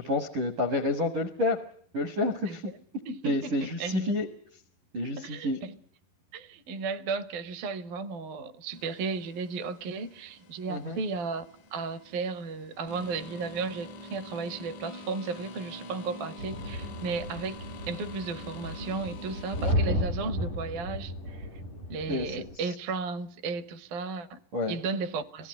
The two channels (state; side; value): late; left; 12 ms